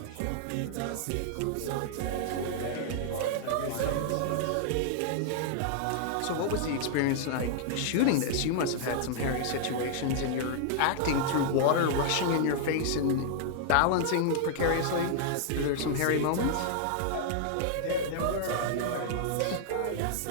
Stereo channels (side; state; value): both; different; correlation -0.01